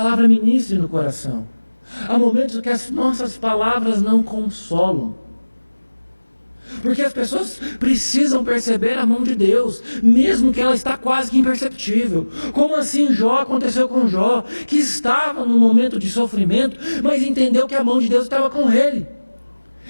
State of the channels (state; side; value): inverted; both; correlation -1.00